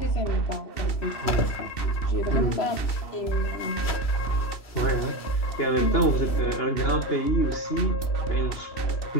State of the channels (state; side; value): late; right; 2.7 ms